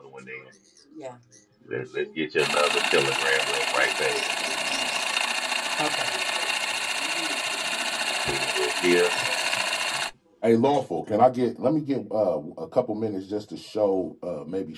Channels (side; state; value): both; identical; correlation 1.00